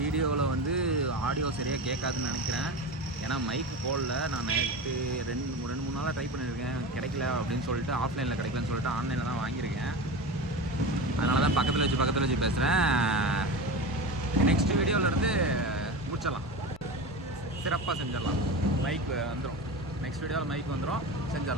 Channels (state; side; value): normal; both; correlation 0.26